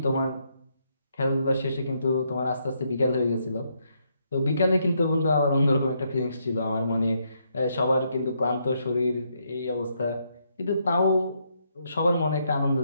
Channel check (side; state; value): both; inverted; correlation -0.76